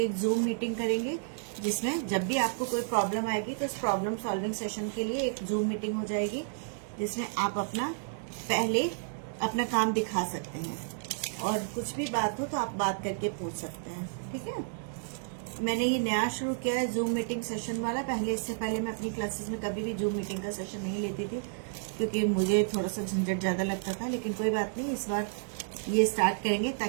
एक जूम मीटिंग करेंगे, जिसमें जब भी आपको कोई प्रॉब्लम आएगी तो इस प्रॉब्लम सॉल्विंग सेशन के लिए एक जूम मीटिंग हो जाएगी, जिसमें आप पहले अपना काम दिखा सकते हैं और कुछ भी बात हो तो आप बात करके पूछ सकते हैं। ठीक है, मैंने ये नया शुरू किया है जूम मीटिंग सेशन वाला। इससे पहले मैं अपनी क्लासेस में कभी भी जूम मीटिंग का सेशन नहीं लेती थी, क्योंकि मुझे थोड़ा सा झंझट ज्यादा लगता था। लेकिन कोई बात नहीं, इस बार ये स्टार्ट करेंगे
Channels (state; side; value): silent; left; digital silence